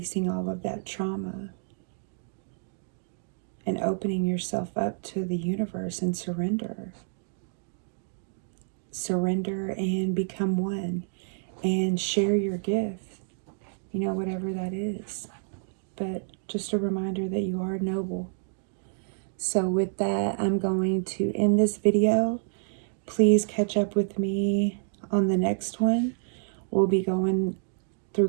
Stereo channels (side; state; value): left; silent; 57 dB below the other